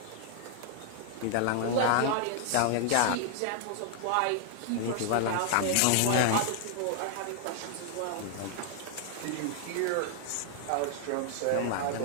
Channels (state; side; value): different; both; correlation -0.01